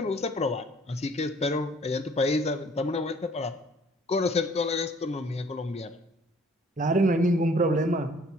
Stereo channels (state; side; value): normal; both; correlation 0.57